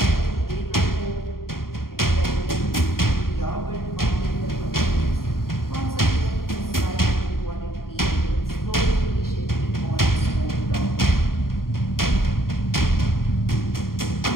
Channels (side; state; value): right; late; 0.92 ms